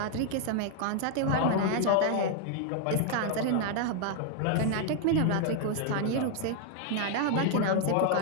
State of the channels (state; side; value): different; both; correlation 0.00